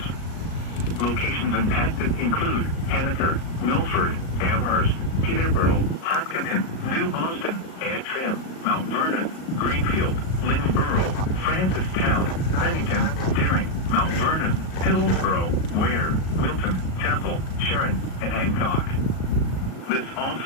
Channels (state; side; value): late; right; 38 ms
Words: Locations impacted include Annaker, Milford, Amherst, Peterborough, Hopkinton, New Boston, Antrim, Mount Vernon, Greenfield, Lynnborough, Francistown, Bennington, Deering, Mount Vernon, Hillsborough, Ware, Wilton, Temple, Sharon, and Hancock. This